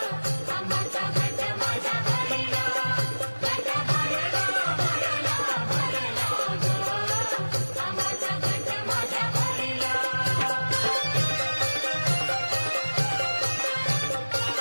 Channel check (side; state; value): both; inverted; correlation -1.00